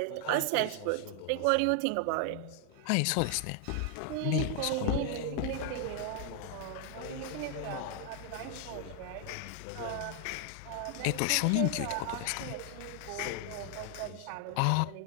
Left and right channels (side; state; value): both; different; correlation 0.00